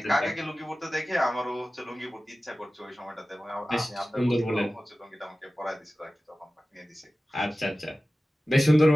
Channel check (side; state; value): both; normal; correlation 0.96